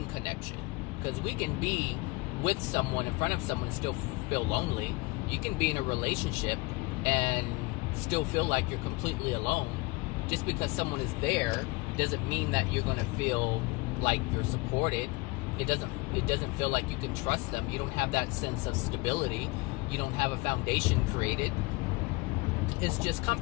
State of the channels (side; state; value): right; quieter; 24.7 dB